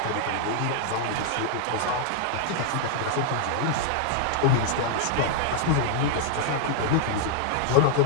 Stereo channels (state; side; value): different; both; correlation -0.01